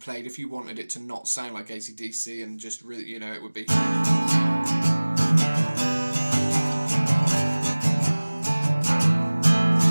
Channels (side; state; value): both; inverted; correlation -1.00